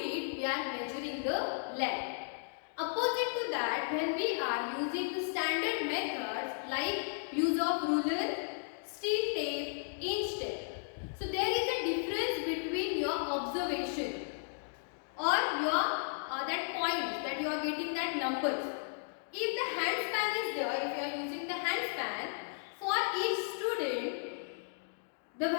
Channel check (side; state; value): right; silent; digital silence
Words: we are measuring the length. Opposite to that, when we are using the standard methods like use of ruler, steel tape, inch tape. So there is a difference between your observation or your that point that you are getting that numbers. If the hand span is there, if you are using the hand span, for each student the